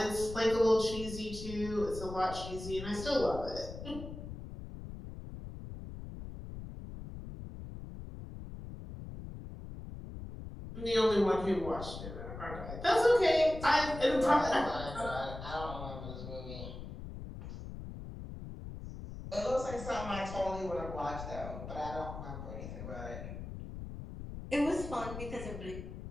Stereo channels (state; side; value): noise; left; rumble, 10 dB below the sound